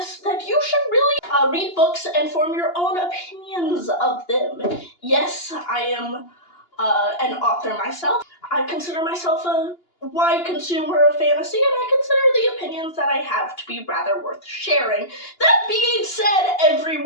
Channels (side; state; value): right; late; 2.8 ms